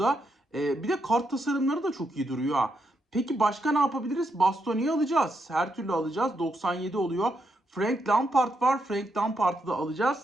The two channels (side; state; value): both; normal; correlation 0.80